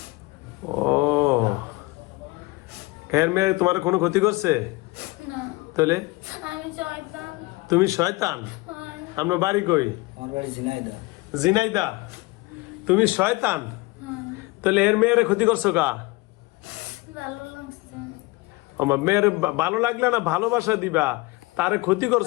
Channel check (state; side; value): quieter; right; 23.2 dB